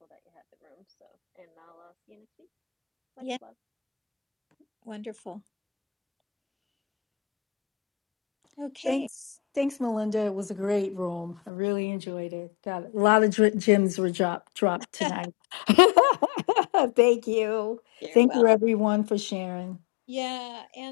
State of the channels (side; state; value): right; drops out; at 11.5 s